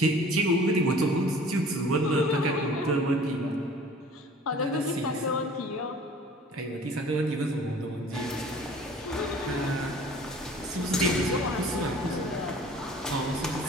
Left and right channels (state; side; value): normal; both; correlation 0.47